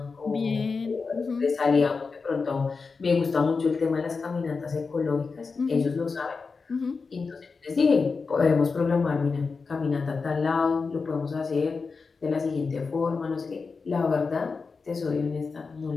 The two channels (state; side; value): quieter; right; 4.6 dB